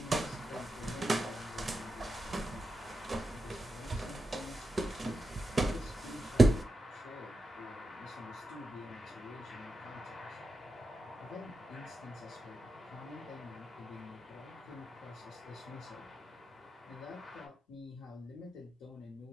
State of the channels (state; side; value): normal; both; correlation 0.88